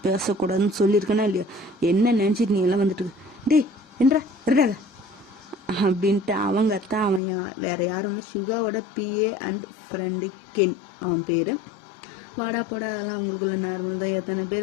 பேசக்கூடாதுன்னு சொல்லியிருக்கேனா இல்லையா? என்ன நினச்சிட்டு நீ எல்லாம் வந்துட்டு டே என்றா இருக்காத அப்படின்ட்டு அவங்க தான். அவன் வேற யாரும் சுகாவோட பிஏ அண்ட் ஃப்ரெண்டு கென் அவன் பேர். வாடா போடா அதெல்லாம் அவங்களுக்குள்ள நார்மல் தான். எத்தனை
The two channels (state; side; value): drops out; right; at 7.2 s